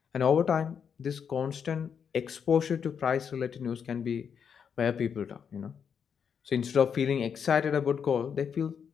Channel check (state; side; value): quieter; right; 7.2 dB